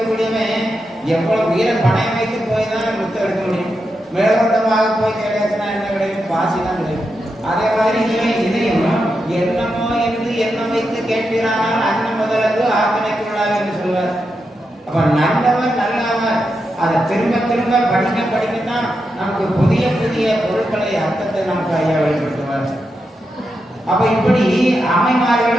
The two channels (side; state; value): both; normal; correlation 0.86